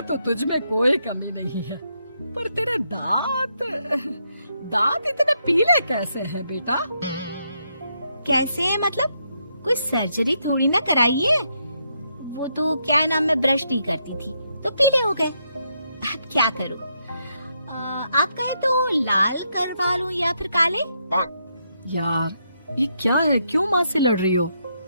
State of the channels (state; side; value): inverted; both; correlation -0.79